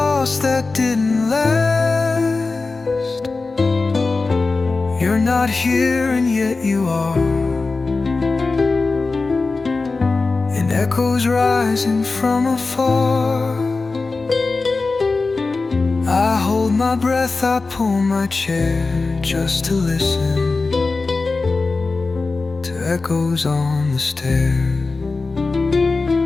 that didn't last. You're not here and yet you are, and echoes rising from afar. I hold my breath, I pull my chair just to listen to echoes on the stair.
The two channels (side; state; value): right; quieter; 3.8 dB